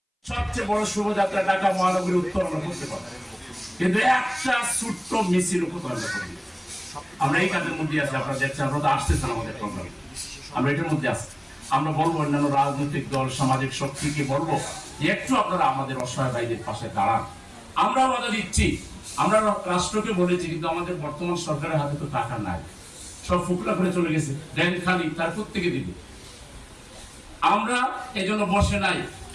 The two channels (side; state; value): both; identical; correlation 1.00